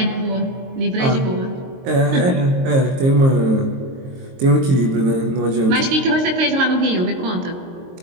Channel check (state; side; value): late; left; 22 ms